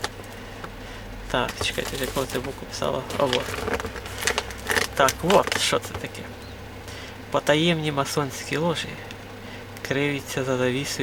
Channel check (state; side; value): identical; both; correlation 1.00